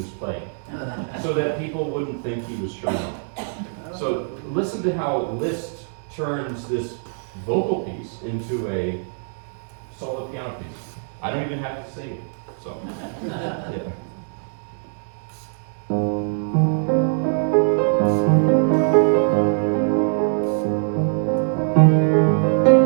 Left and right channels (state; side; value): silent; left; digital silence